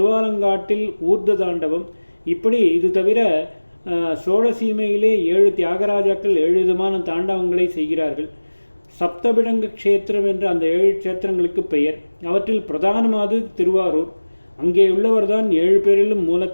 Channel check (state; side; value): inverted; both; correlation -1.00